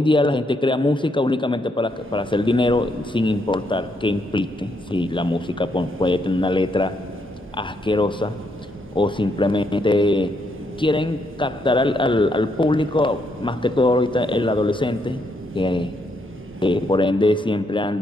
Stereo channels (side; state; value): both; normal; correlation 0.76